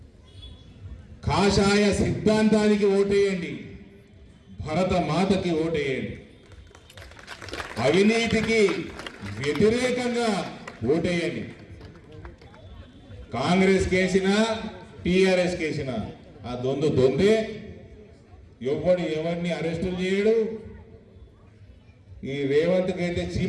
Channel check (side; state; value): both; identical; correlation 1.00